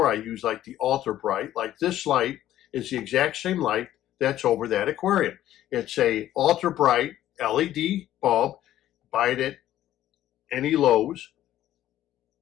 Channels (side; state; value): right; quieter; 12.9 dB